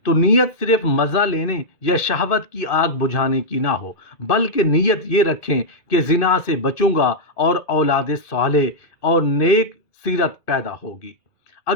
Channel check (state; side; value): late; right; 2.6 ms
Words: तो नीयत सिर्फ मज़ा लेने या शहवत की आग बुझाने की ना हो, बल्कि नीयत ये रखें कि जिना से बचूंगा और औलाद साले और नेक सीरत पैदा होगी।